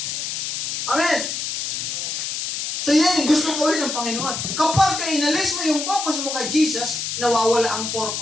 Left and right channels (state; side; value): noise; left; hiss, 3 dB below the sound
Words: Amen. So yan yung gusto gawin ng Panginoon. Kapag inalis mo yung focus mo kay Jesus, nawawala ang